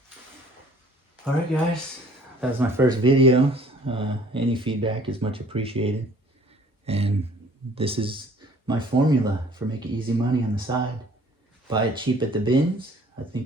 all right, guys, that was my first video. Any feedback is much appreciated, and this is my formula for making easy money on the side. Buy it cheap at the bins. I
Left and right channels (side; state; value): both; normal; correlation 0.55